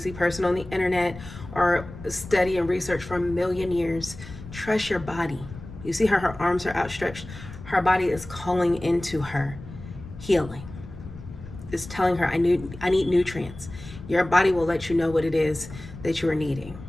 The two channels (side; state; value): left; noise; rumble, 14 dB below the sound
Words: person on the internet or study and research for a million years. Trust your body. You see how her arms are outstretched? Her body is calling into her healing. It's telling her, I need nutrients. Your body will let you know what it is that you are needing.